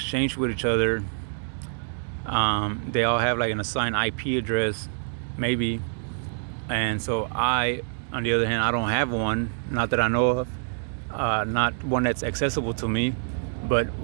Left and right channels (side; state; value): left; silent; digital silence